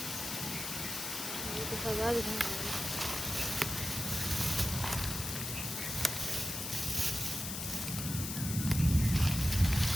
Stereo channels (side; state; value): left; noise; hiss, 5 dB below the sound